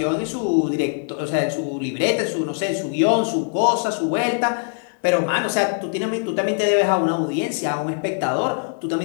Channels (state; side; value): silent; right; 64 dB below the other